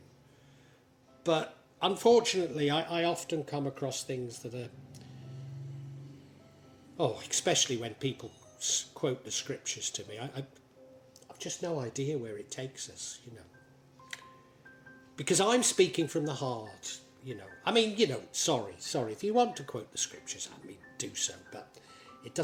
But unfortunately, I often come across things that are, especially when people quote the scriptures to me, I've just no idea where it takes us, Because I'm speaking from the heart, sorry, if you want to quote the scriptures, do so, but it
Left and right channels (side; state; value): both; identical; correlation 1.00